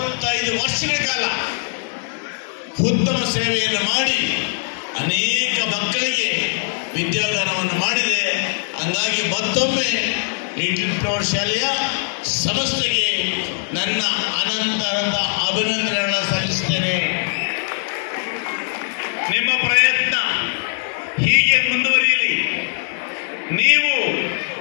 ವರ್ಷಗಳ ಕಾಲ ಉತ್ತಮ ಸೇವೆಯನ್ನು ಮಾಡಿ ಅನೇಕ ಮಕ್ಕಳಿಗೆ ವಿದ್ಯಾದಾನವನ್ನು ಮಾಡಿದೆ. ಹಂಗಾಗಿ ಮತ್ತೊಮ್ಮೆ ಲಿಟಲ್ ಫ್ಲವರ್ ಶಾಲೆಯ ಸಂಸ್ಥೆಗೆ ನನ್ನ ಅನಂತ ಅಭಿನಂದನೆಗಳನ್ನು ಸಲ್ಲಿಸುತ್ತೇನೆ. ನಿಮ್ಮ ಪ್ರಯತ್ನ ಹೀಗೆ ಮುಂದುವರಿಯಲಿ. ನೀವು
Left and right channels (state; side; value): silent; right; digital silence